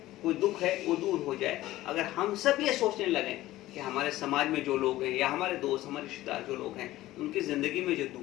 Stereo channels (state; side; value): quieter; right; 16.0 dB